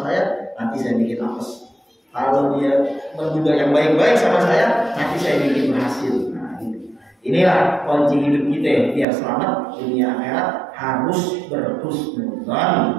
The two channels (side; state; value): left; drops out; at 9.1 s